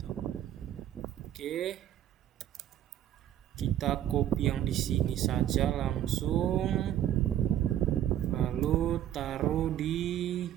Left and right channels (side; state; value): left; quieter; 11.5 dB